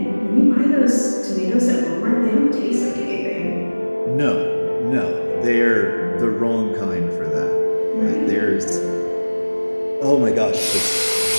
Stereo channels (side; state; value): both; inverted; correlation -1.00